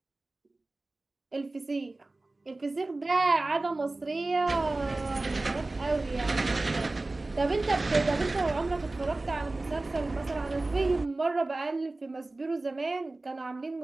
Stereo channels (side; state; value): left; quieter; 3.0 dB